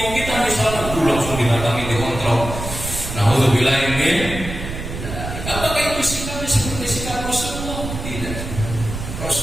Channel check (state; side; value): noise; right; rumble, 7 dB below the sound